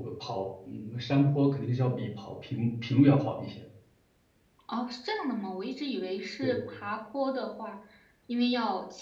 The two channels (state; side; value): identical; both; correlation 1.00